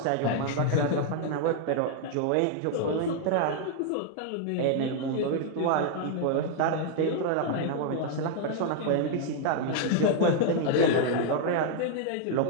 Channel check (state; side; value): different; both; correlation 0.00